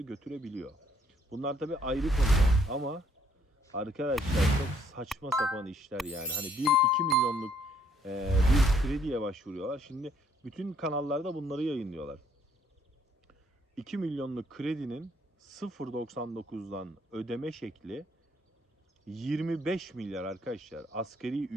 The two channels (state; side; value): normal; both; correlation 0.66